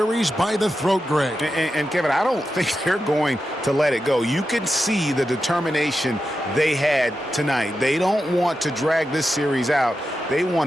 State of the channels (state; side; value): normal; both; correlation 0.90